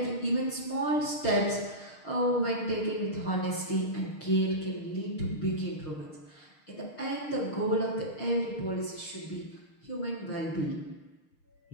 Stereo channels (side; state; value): right; late; 6.5 ms